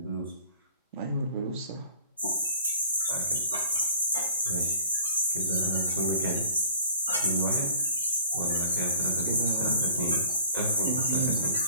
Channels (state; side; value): inverted; both; correlation -0.51